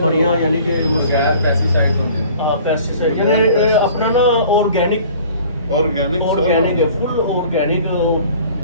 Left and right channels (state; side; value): inverted; both; correlation -0.49